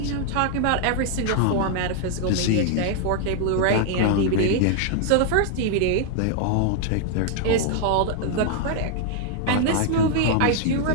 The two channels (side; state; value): both; different; correlation 0.00